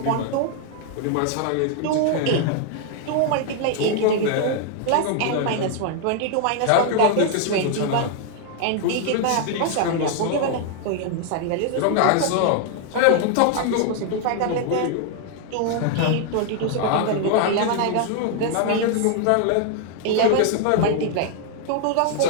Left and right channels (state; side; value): different; both; correlation 0.00